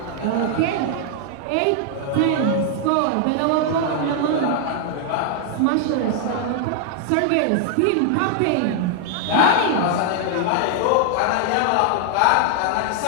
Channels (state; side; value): different; both; correlation 0.00